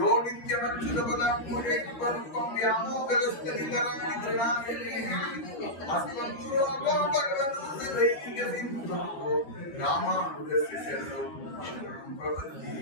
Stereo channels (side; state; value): right; late; 12 ms